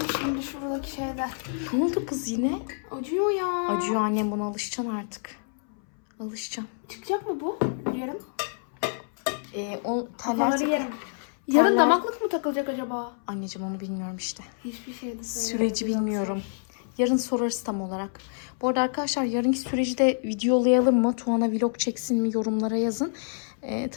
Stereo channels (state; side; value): silent; right; 60 dB below the other